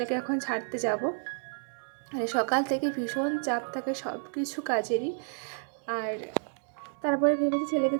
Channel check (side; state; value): left; silent; 58 dB below the other